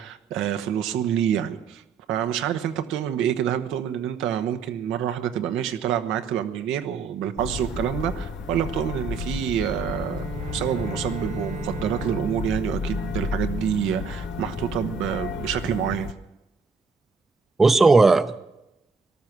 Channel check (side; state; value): left; quieter; 4.9 dB